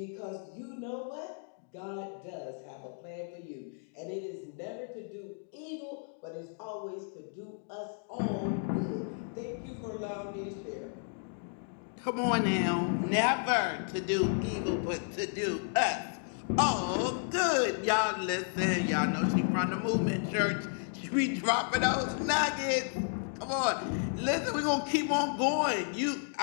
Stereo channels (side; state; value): right; silent; 56 dB below the other